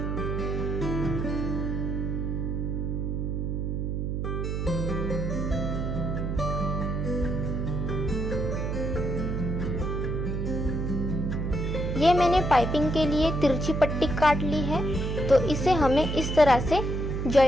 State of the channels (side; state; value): right; noise; hum, 1 dB below the sound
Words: ये मैंने पाइपिंग के लिए तिरछी पट्टी काट ली है, तो इसे हमें इस तरह से